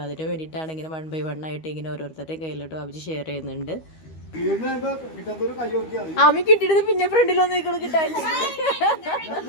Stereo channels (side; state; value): right; late; 13 ms